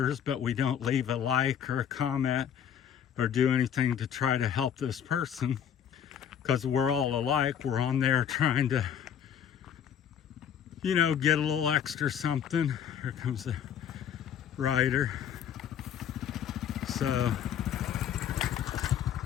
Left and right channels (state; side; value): quieter; right; 8.8 dB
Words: but we don't leave a like or a comment or do anything to try to help this person, because we're all alike. We're on there trying to, get a little extra something. Here comes the rider. So